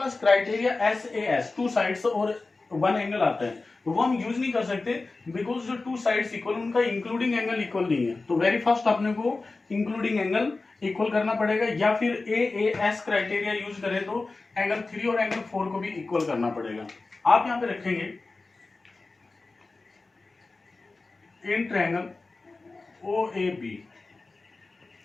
क्राइटेरिया SAS टू साइड्स और वन एंगल आता है, तो वो हम यूज नहीं कर सकते बिकॉज जो टू साइड्स इक्वल उनका इंक्लूडिंग एंगल इक्वल नहीं है। तो वेरी फर्स्ट अपने को इंक्लूडिंग एंगल इक्वल करना पड़ेगा, या फिर AAS क्राइटेरिया यूज करें तो एंगल 3 और एंगल 4 को भी इक्वल करना पड़ेगा। आप यहाँ पे रखेंगे इन ट्रायंगल OAB,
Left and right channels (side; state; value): right; quieter; 3.6 dB